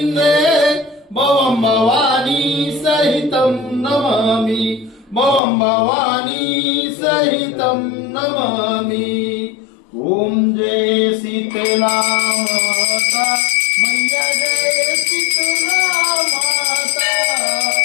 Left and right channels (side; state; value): right; drops out; at 5.4 s